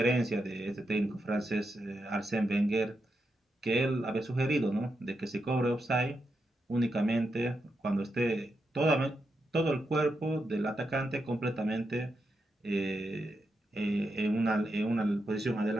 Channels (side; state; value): both; normal; correlation 0.85